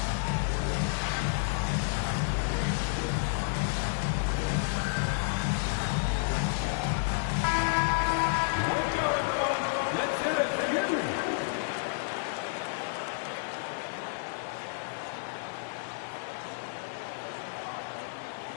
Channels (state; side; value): silent; right; digital silence